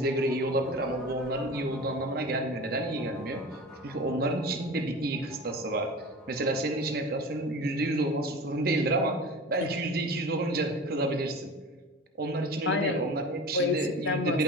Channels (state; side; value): normal; both; correlation 0.35